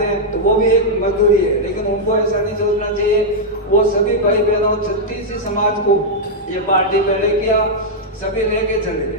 हैं, तो वो भी एक मजदूरी है। लेकिन उनको ऐसा नहीं सोचना चाहिए। वो सभी भाई बहनों 36 समाज को ये पार्टी पहले किया, सभी लेके चले।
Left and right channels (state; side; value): normal; both; correlation -0.05